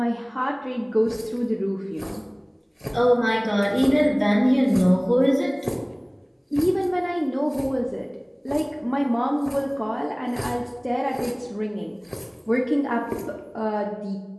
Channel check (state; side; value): identical; both; correlation 1.00